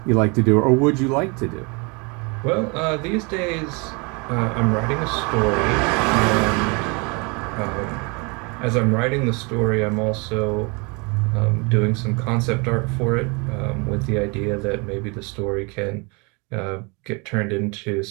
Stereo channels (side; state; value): left; quieter; 30.6 dB